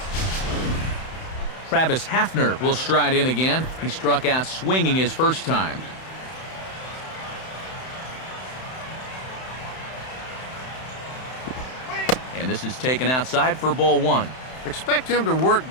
Travis Hafner will stride in again. He struck out swinging his first time. And this is taken outside for ball 1. Expect him to work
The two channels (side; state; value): right; late; 31 ms